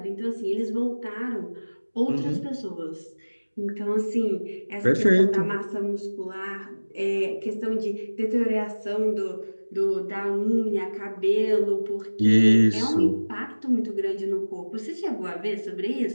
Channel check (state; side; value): inverted; both; correlation -1.00